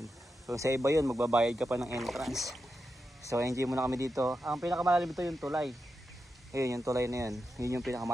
So sa iba yun, magbabayad ka pa ng entrance. So enjoy muna kami dito. Ang pinakamalalim ito yung tulay. Ayun, yung tulay na yun. Yun yung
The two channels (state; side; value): normal; both; correlation 0.88